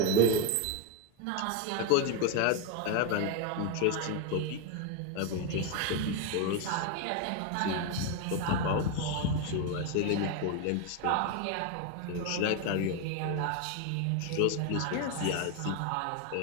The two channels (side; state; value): both; different; correlation 0.01